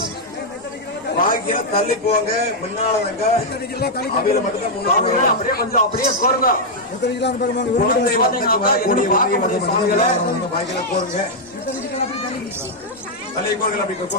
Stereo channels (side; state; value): both; normal; correlation -0.03